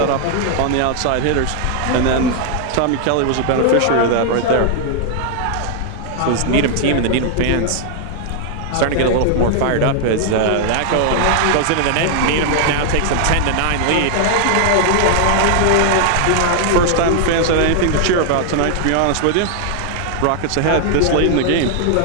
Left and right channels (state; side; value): different; both; correlation 0.00